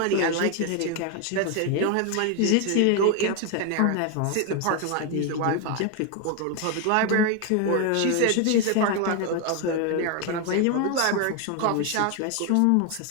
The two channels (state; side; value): different; both; correlation 0.01